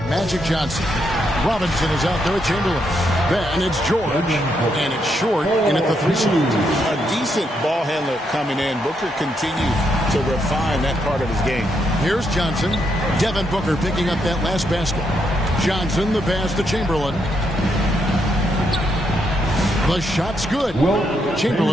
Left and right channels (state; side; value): normal; both; correlation 0.78